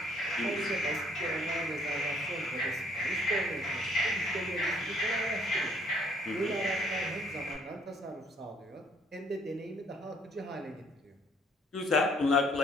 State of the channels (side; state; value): both; normal; correlation 0.62